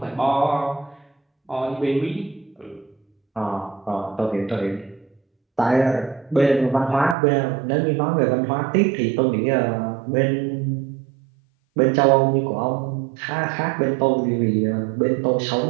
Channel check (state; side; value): drops out; left; at 7.2 s